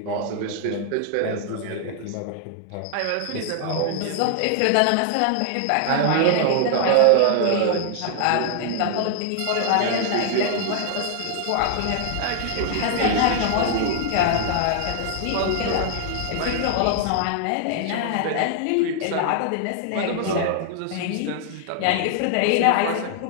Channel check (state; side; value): different; both; correlation 0.00